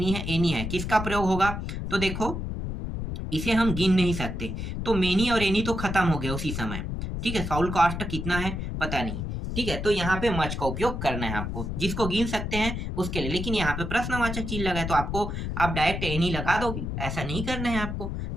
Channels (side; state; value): left; noise; rumble, 4 dB below the sound